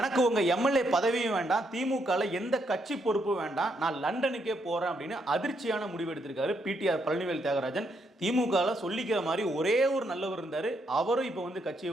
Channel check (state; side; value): normal; both; correlation 0.76